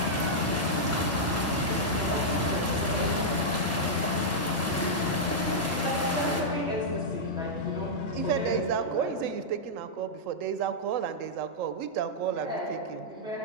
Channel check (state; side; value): normal; both; correlation -0.08